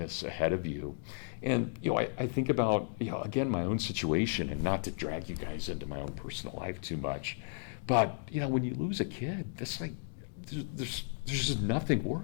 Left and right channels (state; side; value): silent; right; digital silence